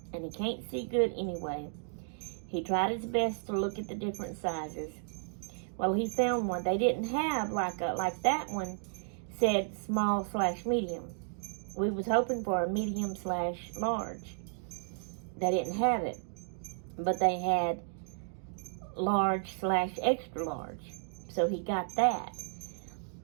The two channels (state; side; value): silent; left; digital silence